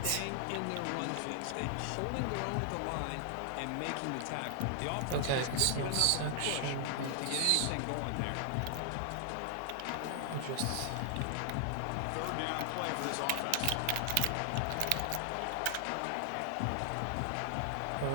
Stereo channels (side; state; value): both; different; correlation 0.00